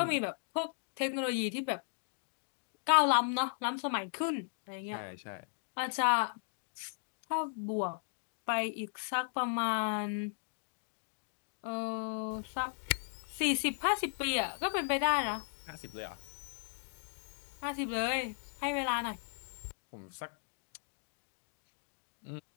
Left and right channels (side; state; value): right; silent; digital silence